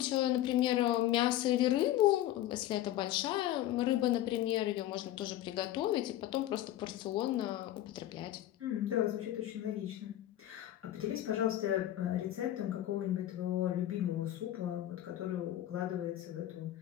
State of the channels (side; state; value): right; quieter; 13.4 dB